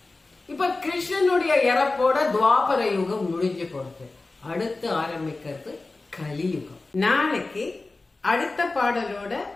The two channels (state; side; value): quieter; right; 3.4 dB